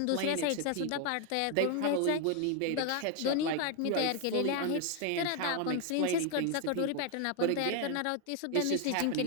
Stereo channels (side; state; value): both; different; correlation 0.01